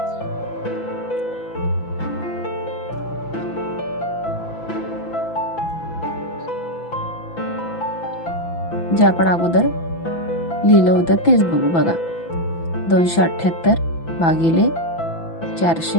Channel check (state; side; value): late; right; 6.0 ms